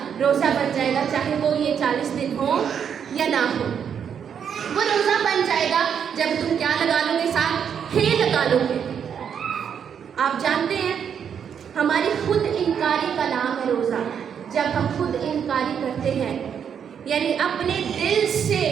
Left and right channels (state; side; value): quieter; left; 7.8 dB